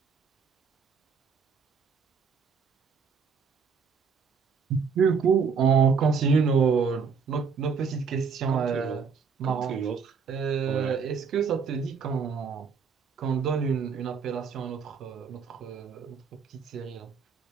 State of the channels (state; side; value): quieter; left; 5.8 dB